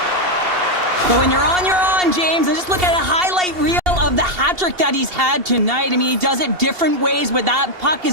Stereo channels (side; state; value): left; late; 2.7 ms